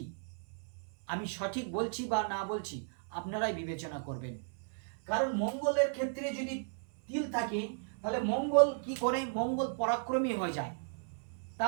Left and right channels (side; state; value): left; silent; 55 dB below the other